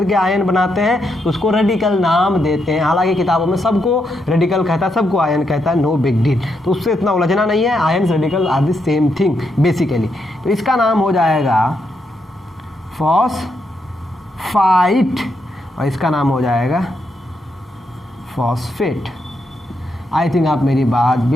आयन बनाते हैं तो उसको रेडिकल नाम देते हैं। हालांकि किताबों में सबको रेडिकल कहता है, सबको आयन कहता है, नो बिग डील, तो उससे इतना उलझना नहीं है, ions radical are the same thing basically. तो इसका नाम हो जाएगा फॉस्फाइट और इसका नाम हो जाएगा फॉस्फेट। आई थिंक आप मेरी बात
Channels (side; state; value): both; normal; correlation 0.80